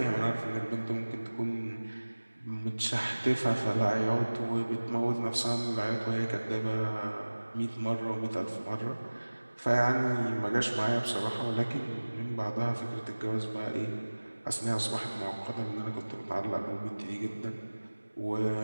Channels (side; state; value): both; inverted; correlation -1.00